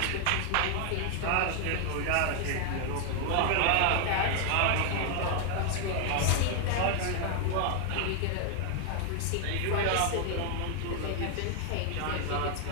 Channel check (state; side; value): different; both; correlation 0.00